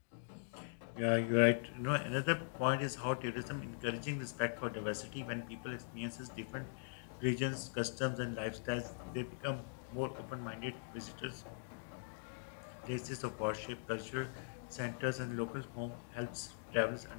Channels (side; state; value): right; silent; digital silence